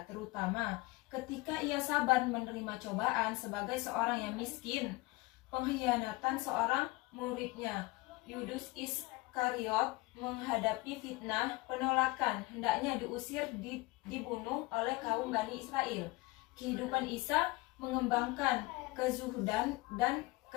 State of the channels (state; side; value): quieter; right; 22.1 dB